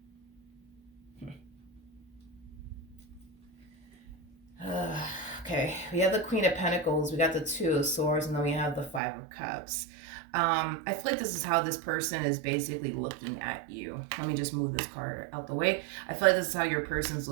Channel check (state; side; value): drops out; left; at 9.0 s